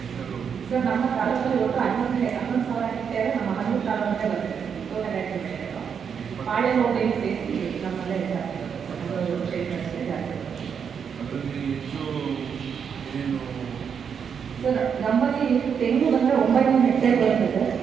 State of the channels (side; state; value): left; quieter; 7.0 dB